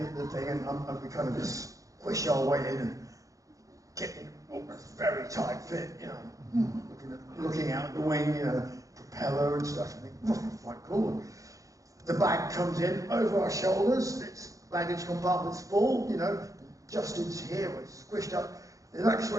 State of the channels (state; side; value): late; left; 0.16 ms